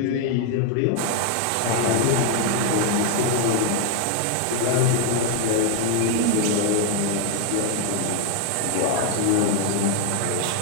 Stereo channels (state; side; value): different; both; correlation 0.01